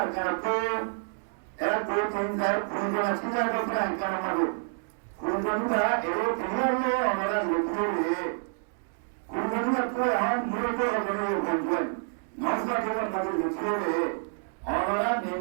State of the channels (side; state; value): left; silent; digital silence